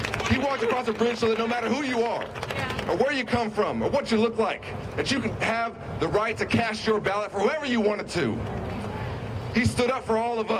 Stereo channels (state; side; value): identical; both; correlation 1.00